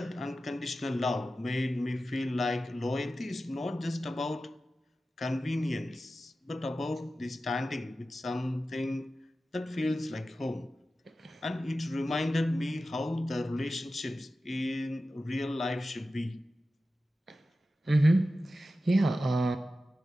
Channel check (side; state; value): both; normal; correlation 0.93